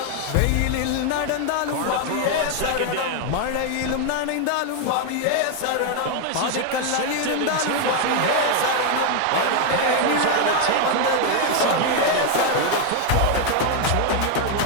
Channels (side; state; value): both; different; correlation 0.01